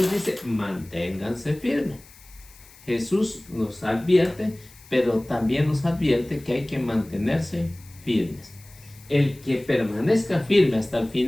dice, manténganse firmes. Jesús nos advierte, pero también nos advierte que hay que mantenerse firmes. El que permanezca firme hasta el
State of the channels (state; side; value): noise; left; hiss, 24 dB below the sound